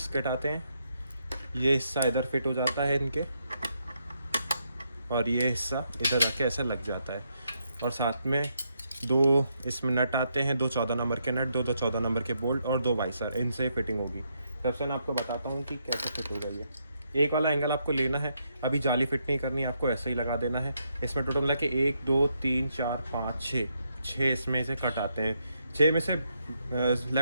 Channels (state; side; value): inverted; both; correlation -0.78